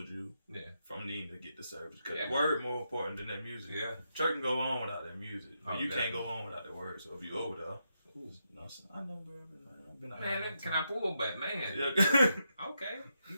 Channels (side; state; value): both; inverted; correlation -0.83